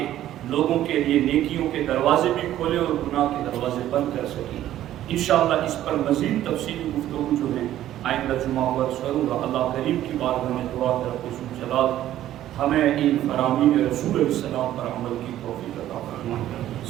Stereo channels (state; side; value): quieter; left; 12.8 dB